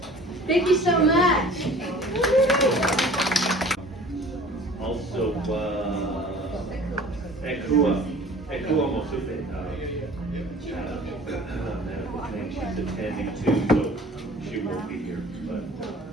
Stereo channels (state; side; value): normal; both; correlation 0.46